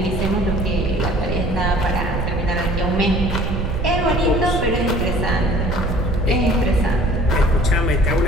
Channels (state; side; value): noise; right; rumble, 2 dB below the sound